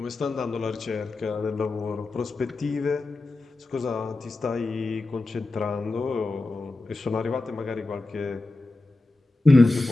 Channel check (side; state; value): right; quieter; 3.1 dB